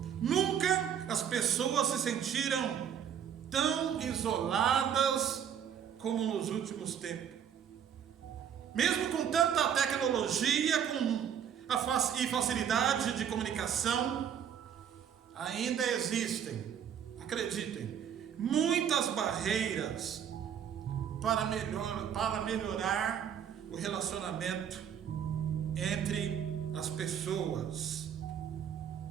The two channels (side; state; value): left; quieter; 8.6 dB